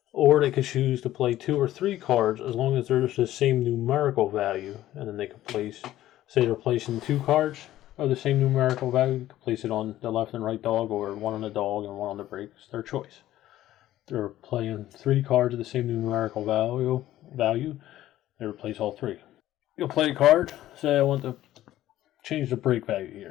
or they could choose to play 2 or 3 cards as long as there's the same numerical value, and then they could place, say they're placing 2 cards of the same numerical value, you could place it on the left and right dog, or one on the dog and one on the brake. It's their choice. They're playing 3 cards of the same numerical value, they replace all 3. You'll play a card, say I want to change the brake value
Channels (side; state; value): right; quieter; 14.0 dB